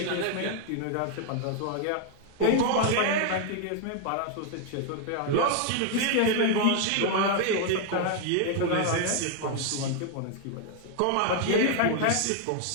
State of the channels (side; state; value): both; different; correlation 0.00